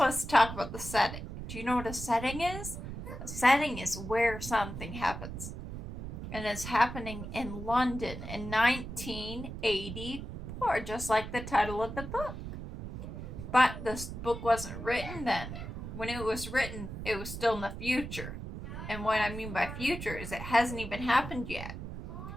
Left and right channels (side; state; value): right; noise; rumble, 8 dB below the sound